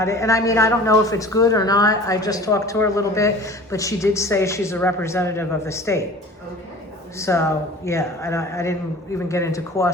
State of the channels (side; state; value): both; normal; correlation 0.43